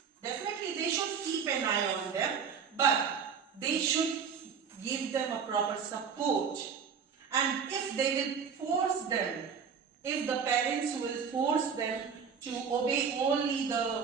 definitely they should keep an eye on them, but they should give them a proper support. And if they will force them, if the parents will force them to obey only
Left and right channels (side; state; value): left; quieter; 6.6 dB